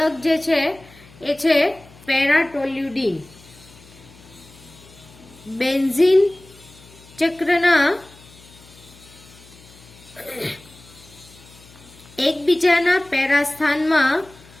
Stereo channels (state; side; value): noise; left; hum, 24 dB below the sound